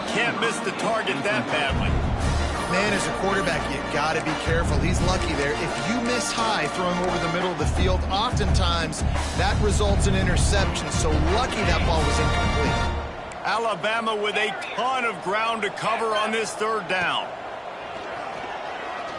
Can't miss the target that badly. Man, as a quarterback, you got to be careful. He's lucky there. If you miss high throwing over the middle of the field, oftentimes that results in interception. So lucky that ball was incomplete. Alabama with a ton of ground to cover on this third down.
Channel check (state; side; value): identical; both; correlation 1.00